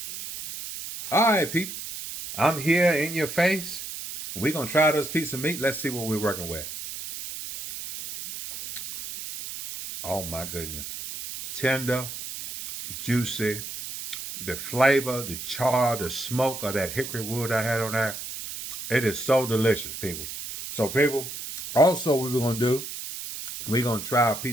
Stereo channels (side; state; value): right; noise; hiss, 8 dB below the sound